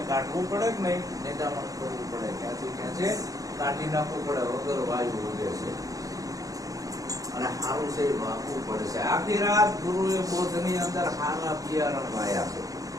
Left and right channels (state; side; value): late; left; 0.17 ms